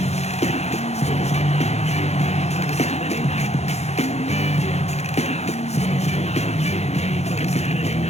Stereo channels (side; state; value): right; late; 0.31 ms